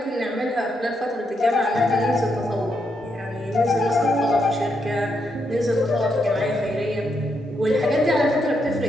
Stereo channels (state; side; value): normal; both; correlation 0.80